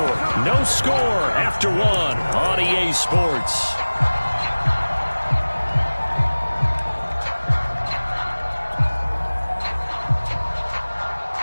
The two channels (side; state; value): both; inverted; correlation -1.00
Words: No score after 1 on EA Sports.